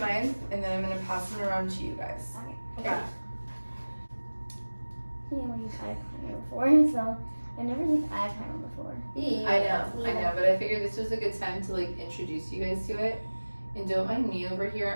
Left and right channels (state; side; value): inverted; both; correlation -1.00